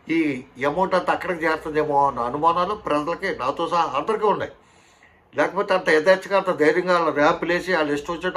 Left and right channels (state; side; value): identical; both; correlation 1.00